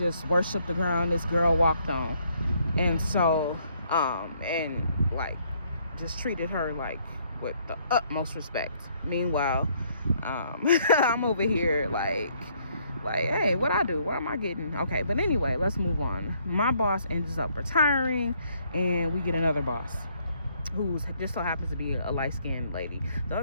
worshiped the ground this girl walked on. And so, and like just treated her like with the utmost respect. Meanwhile, I'm over here like, hey, what I do? What am I getting? Okay, but anyway, let's move on. My boss ends up retiring, and we get another boss who just so happens to be a light-skinned lady. The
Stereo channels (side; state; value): both; inverted; correlation -0.68